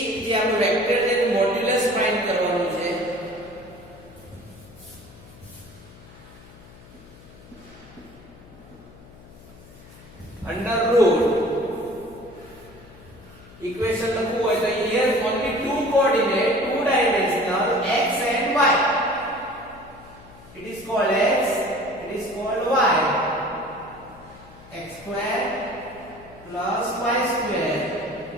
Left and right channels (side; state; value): left; noise; hum, 21 dB below the sound